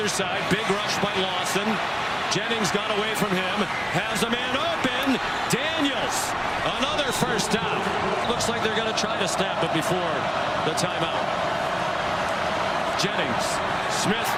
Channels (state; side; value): identical; both; correlation 1.00